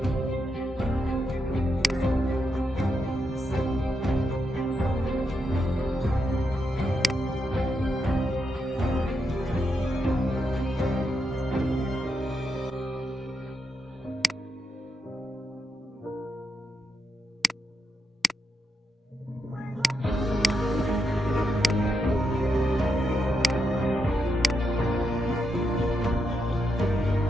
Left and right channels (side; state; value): both; normal; correlation 0.83